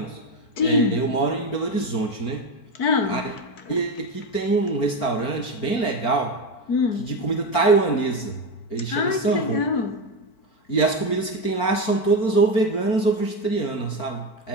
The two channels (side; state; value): right; late; 4.4 ms